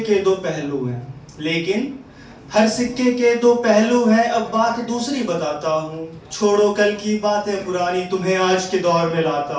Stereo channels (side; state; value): both; identical; correlation 1.00